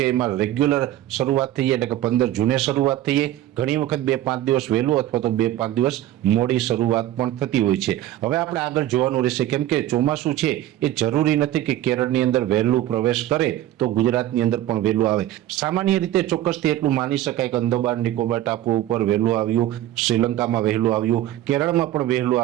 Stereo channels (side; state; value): left; quieter; 13.6 dB